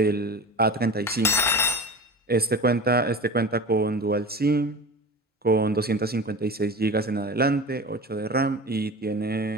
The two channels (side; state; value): both; normal; correlation 0.32